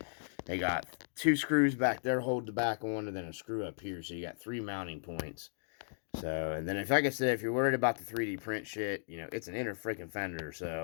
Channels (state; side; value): silent; right; digital silence